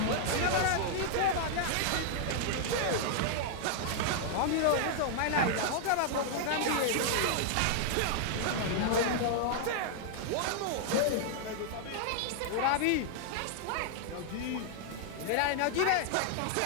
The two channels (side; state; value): both; different; correlation -0.01